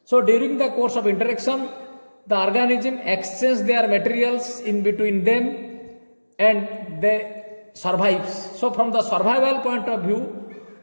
So during the course of interaction, the organism exchange their materials in between them and they survives. So from the survival point of view,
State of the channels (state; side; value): inverted; both; correlation -1.00